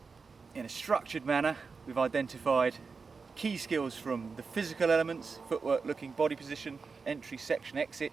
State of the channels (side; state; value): left; quieter; 4.8 dB